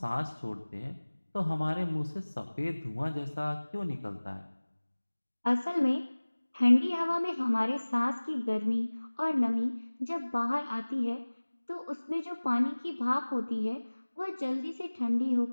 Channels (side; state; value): both; inverted; correlation -1.00